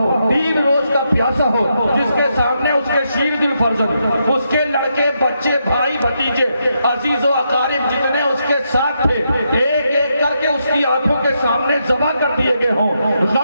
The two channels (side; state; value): both; inverted; correlation -0.81